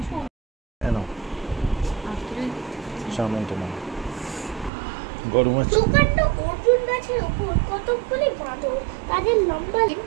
গরম আছে। দোকানটা অর্জুন গাছের উপর কতগুলি বাঁদর, তাদের লম্বা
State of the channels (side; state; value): left; drops out; at 4.7 s